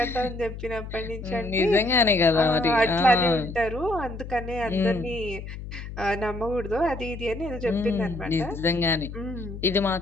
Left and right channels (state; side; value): noise; left; hum, 10 dB below the sound